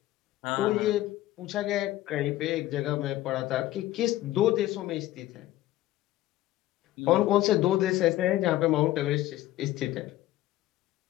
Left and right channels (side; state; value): right; quieter; 15.3 dB